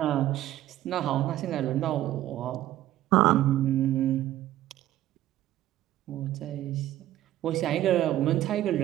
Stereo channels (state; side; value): quieter; left; 13.7 dB